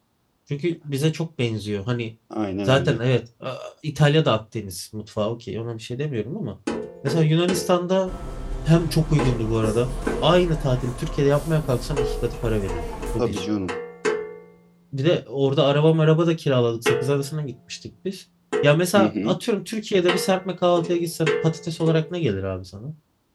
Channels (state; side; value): identical; both; correlation 1.00